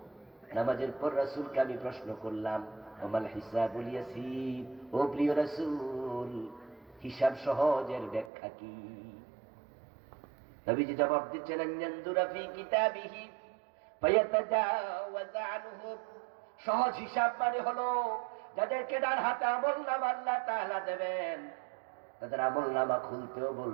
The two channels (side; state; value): left; drops out; at 8.3 s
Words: নামাজের পর রাসূলকে আমি প্রশ্ন করলাম, ওমাল হিসাবুল ইয়াসীর, ও প্রিয় রাসূল হিসাব সহজের ব্যাখ্যা কি? নবীজি জবাব দিচ্ছেন, আনয়ানদুরা ফি কিতাবিহি ফায়াতাজাওয়াজ আনহু। সহজ হিসাব মানে হলো যাদেরকে ডান হাতে আমলনামা আল্লাহ তাআলা দেবেন, তাদের আমলনামা খুলতেও